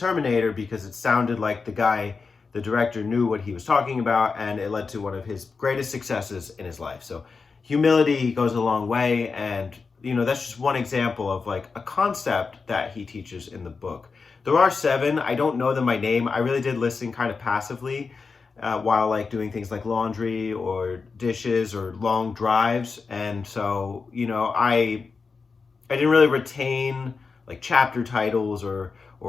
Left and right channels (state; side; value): quieter; right; 4.8 dB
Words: because it sounded like the director knew what he was talking about, and it led to one of his greatest successes in his life. So humility goes a long way, and that's just one example of like a concept that he teaches in the book. There are 7. I don't know them by name. I really did listen kind of passively while like doing things like laundry or dishes or long drives, and so I didn't really retain like chapter titles or